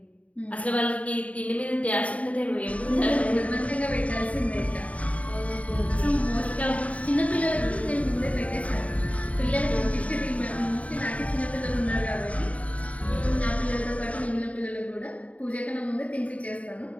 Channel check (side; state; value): right; late; 0.067 ms